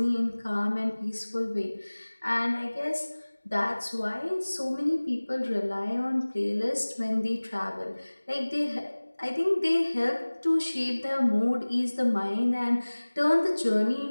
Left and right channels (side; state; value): both; inverted; correlation -1.00